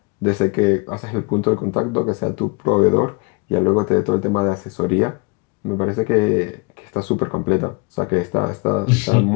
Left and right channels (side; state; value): right; quieter; 29.1 dB